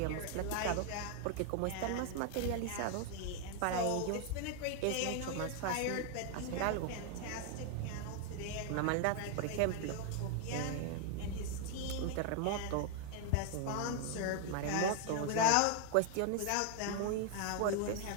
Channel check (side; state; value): both; different; correlation 0.00